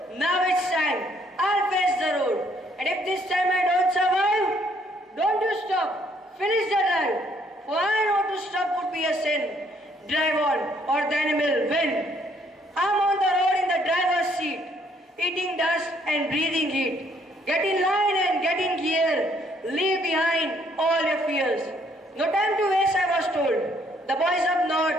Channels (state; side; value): normal; both; correlation 0.66